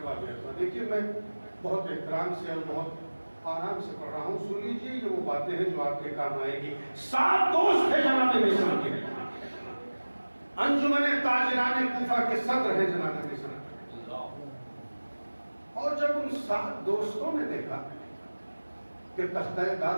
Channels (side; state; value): both; inverted; correlation -1.00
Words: ارباب۔ دیکھیے میں بہت احترام سے اور بہت آرام سے پڑھ رہا ہوں، سن لیجیے، یہ وہ باتیں ہیں جو آپ کے کام آئے گی۔ 7 دوست تھے جناب میثم کے، انجمن تاجران کوفہ کے صدر ہیں جناب میثم۔ اور جب ان 7 دوستوں نے دیکھا کہ تختہ دار